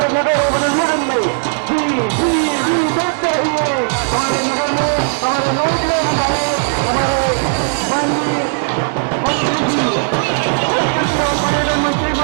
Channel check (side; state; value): left; silent; digital silence